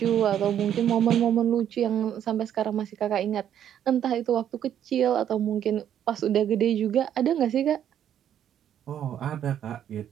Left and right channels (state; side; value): quieter; left; 10.0 dB